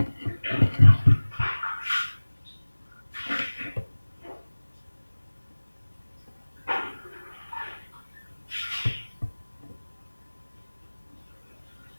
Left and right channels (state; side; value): inverted; both; correlation -1.00